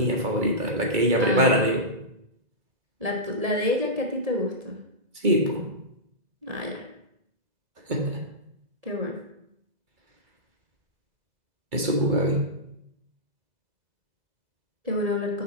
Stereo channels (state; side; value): late; left; 2.3 ms